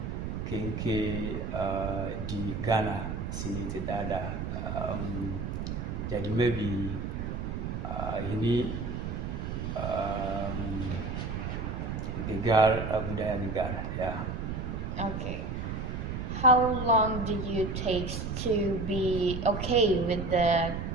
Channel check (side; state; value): right; noise; rumble, 4 dB below the sound